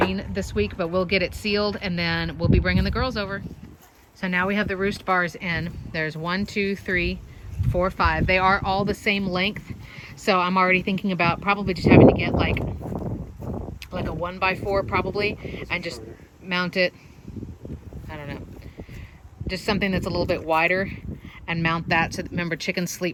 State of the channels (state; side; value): identical; both; correlation 1.00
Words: this week, but we'll get it sealed and then we'll be bringing the girls over. So now we have the roost bars in. There's 1, 2, 3, 4, 5. They are all the same length. So I'm already thinking about probably just having to get like a 1x4 probably, and just mount it, I don't know, just something that's a little bit wider, and mount that. So remember, chickens